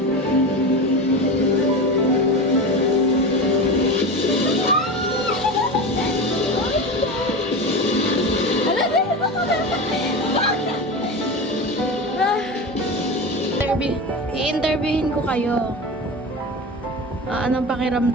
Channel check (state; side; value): normal; both; correlation 0.25